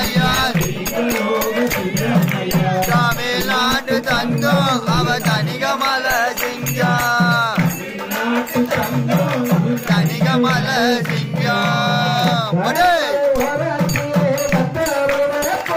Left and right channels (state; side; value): identical; both; correlation 1.00